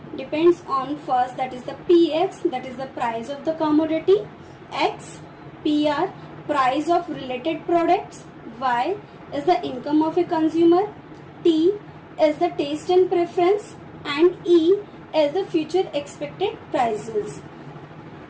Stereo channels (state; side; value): identical; both; correlation 1.00